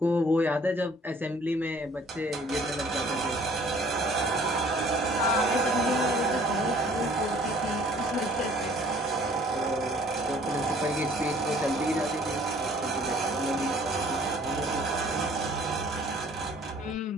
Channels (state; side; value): normal; both; correlation 0.55